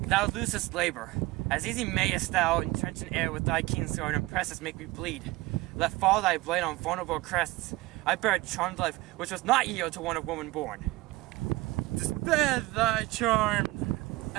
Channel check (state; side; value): quieter; left; 20.3 dB